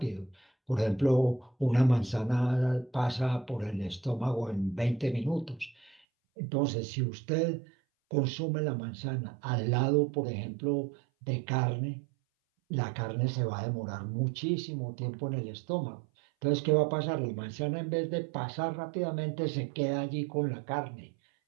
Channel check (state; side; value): drops out; left; at 6.0 s